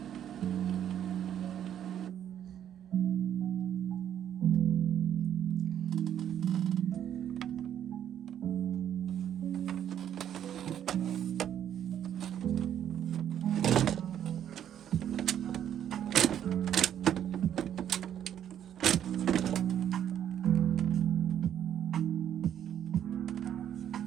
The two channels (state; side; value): quieter; left; 10.0 dB